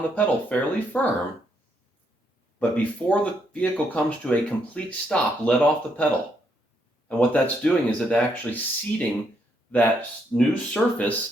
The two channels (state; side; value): normal; both; correlation 0.75